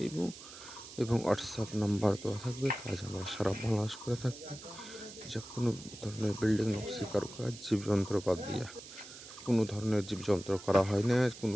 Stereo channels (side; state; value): right; noise; hiss, 15 dB below the sound